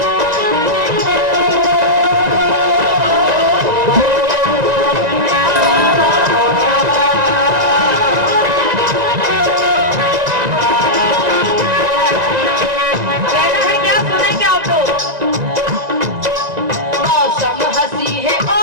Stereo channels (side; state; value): left; late; 1.9 ms